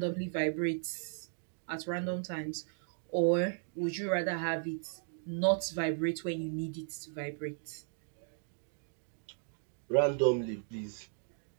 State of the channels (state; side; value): silent; left; digital silence